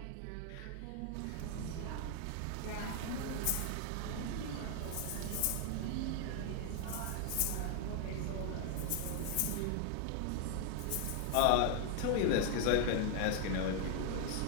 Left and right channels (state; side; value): different; both; correlation 0.00